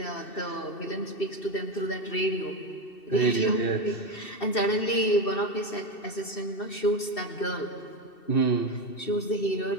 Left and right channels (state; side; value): late; right; 2.7 ms